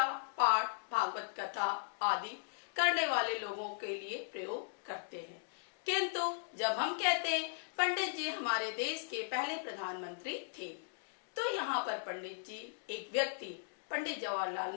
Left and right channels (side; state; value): right; silent; digital silence